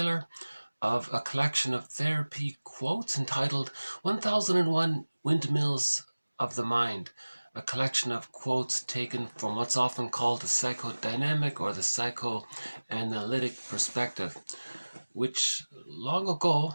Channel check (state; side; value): inverted; both; correlation -1.00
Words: of a collection of therapy quotes entitled 1001 Windmills of the Mind, a collection of quotes taken from what's often called the psychodynamic or the psychoanalytic perspective, which long ago,